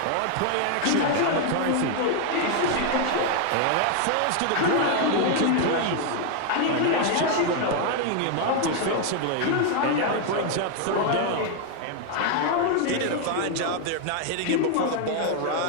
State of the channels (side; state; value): both; different; correlation 0.01